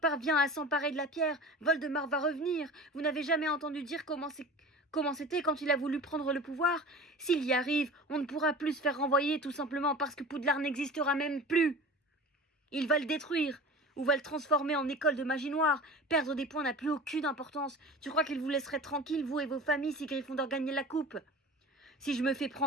à s'emparer de la pierre, Voldemort va revenir. Vous n'avez jamais entendu dire comment c'était quand il a voulu prendre le pouvoir ? S'il y arrive, on ne pourra plus se faire renvoyer tout simplement parce que Poudlard n'existera même plus. Il va le détruire, ou va le transformer en école de magie noire. Perdre des points n'a plus aucune importance. Tu crois qu'il vous laisserait tranquille, vous et vos familles, si Gryffondor gagnait la coupe ? Si je me fais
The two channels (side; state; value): both; normal; correlation 0.37